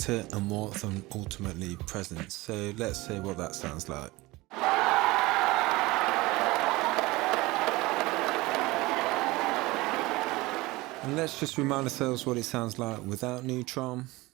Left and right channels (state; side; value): quieter; left; 21.0 dB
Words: and more than ultimately presence. So let's see what that sounds like. And let's just remind ourselves what it sounds like without Neutron.